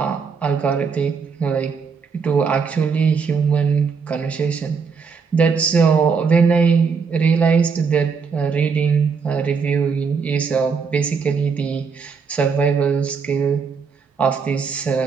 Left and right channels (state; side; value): quieter; left; 5.6 dB